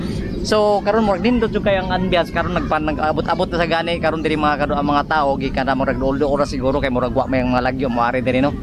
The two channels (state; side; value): identical; both; correlation 1.00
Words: So karon murag nindot jud kay ang ambiance karon nag-abot-abot na sa gani karon diri mga kado ang mga tao gikan na murag doldo ora siguro kay murag wa may mga lagyo moari diri no.